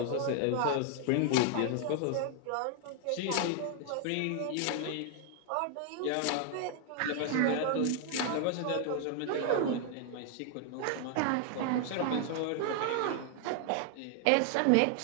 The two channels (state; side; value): different; both; correlation 0.00